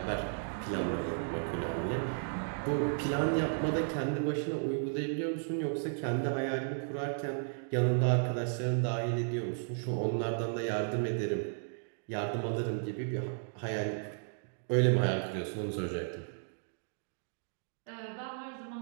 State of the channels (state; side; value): silent; left; digital silence